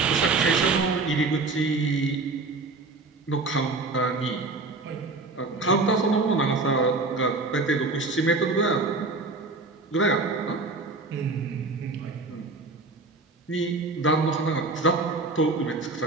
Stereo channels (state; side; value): quieter; left; 3.6 dB